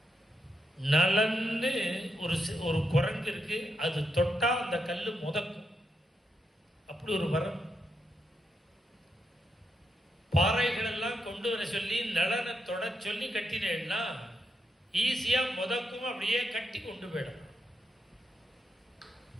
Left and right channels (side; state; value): both; normal; correlation 0.82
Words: நலன்னு ஒரு குரங்கு இருக்கு, அது தொட்டா அந்த கல்லு முதக்கும், அப்படி ஒரு வரம். பாறைகள் எல்லாம் கொண்டு வர சொல்லி நலனை தொட சொல்லி கட்டினேன்னா ஈஸியா முதக்கும், அப்படியே கட்டி கொண்டு போயிடும்.